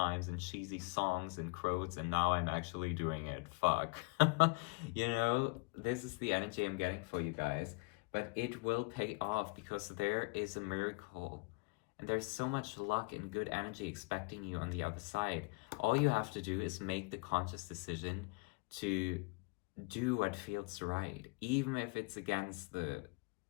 in cheesy songs and quotes, and now I'm actually doing it. Fuck. You know, this is the energy I'm getting for you guys. But it will pay off because there is a miracle. And there's so much luck and good energy expecting you on the other side. All you have to do is make the conscious decision to do what feels right, even if it's against the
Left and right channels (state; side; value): quieter; right; 29.9 dB